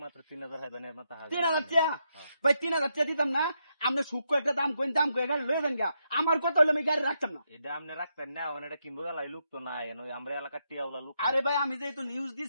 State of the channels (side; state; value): both; inverted; correlation -0.81